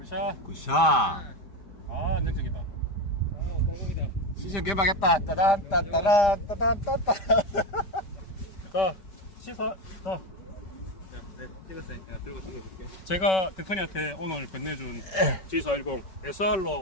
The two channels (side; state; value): right; late; 5.0 ms